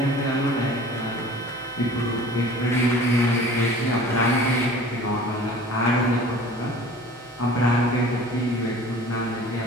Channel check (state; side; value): normal; both; correlation 0.44